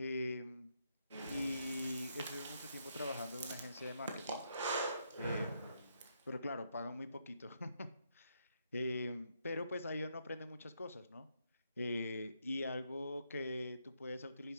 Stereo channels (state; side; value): inverted; both; correlation -0.77